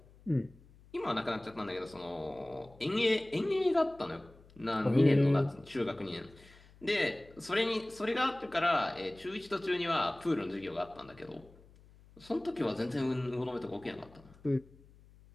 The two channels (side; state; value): left; noise; hum, 25 dB below the sound